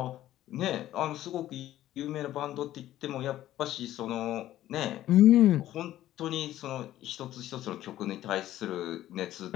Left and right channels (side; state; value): right; quieter; 13.5 dB